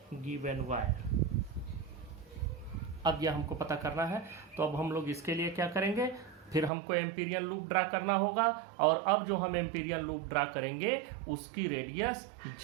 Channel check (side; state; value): left; drops out; at 6.7 s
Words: given wire। अब यह हमको पता करना है, तो अब हम लोग इसके लिए क्या करेंगे, फिर हमको एम्पीरियल लूप ड्रा करना होगा। और अब जो हम एम्पीरियल लूप ड्रा करेंगे उसकी radius